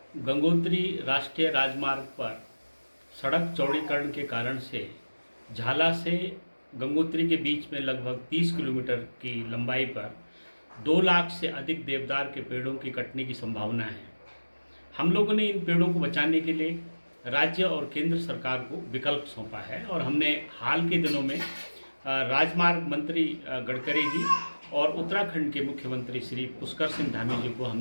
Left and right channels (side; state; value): both; inverted; correlation -1.00